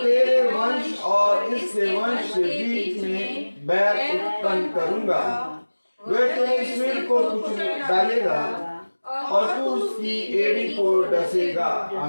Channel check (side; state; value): both; inverted; correlation -1.00